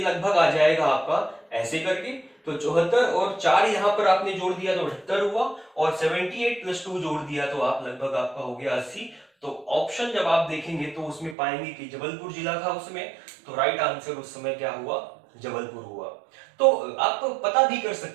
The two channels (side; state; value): left; drops out; at 11.4 s